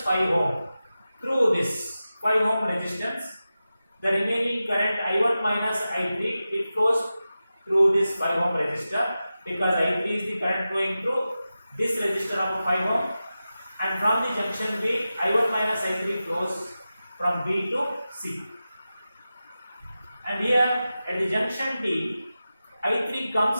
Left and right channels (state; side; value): inverted; both; correlation -0.93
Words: 5 ohm. Through this 5 ohm resistance, the remaining current I1 minus I3, it flows through this 5 ohm resistor, because I3 is the current flowing through this resistor of 5 ohm, and from the junction B, I1 minus I3 flows from B to C. And here at the junction D, I3